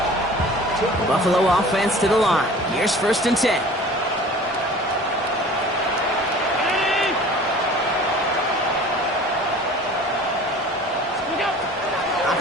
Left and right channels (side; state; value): both; normal; correlation 0.44